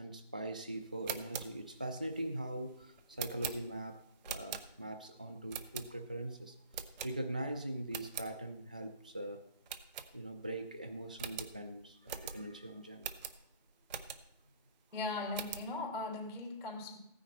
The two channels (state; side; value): inverted; both; correlation -0.48